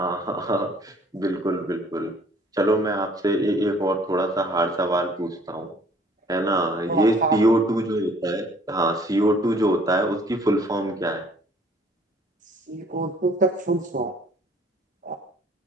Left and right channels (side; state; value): both; normal; correlation 0.57